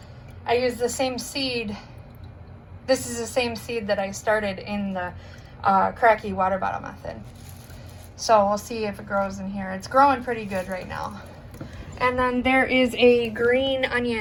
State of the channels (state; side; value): identical; both; correlation 1.00